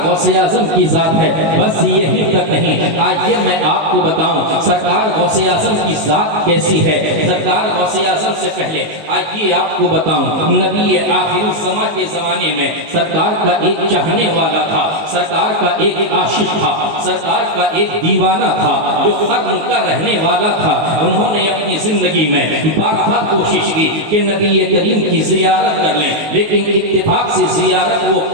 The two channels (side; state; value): left; late; 19 ms